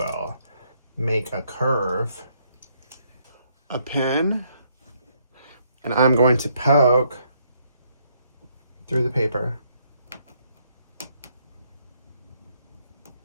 make a curve, a pin, and I'm going to poke through the paper.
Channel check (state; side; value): inverted; both; correlation -0.71